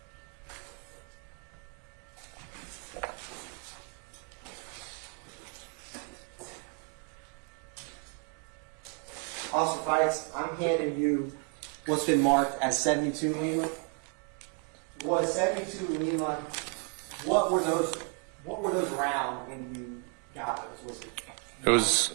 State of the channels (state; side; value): quieter; left; 37.9 dB